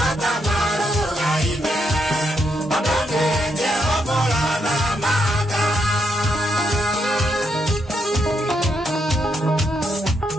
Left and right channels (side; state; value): both; normal; correlation 0.79